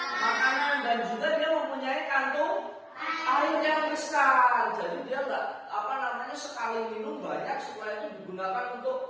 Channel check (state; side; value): identical; both; correlation 1.00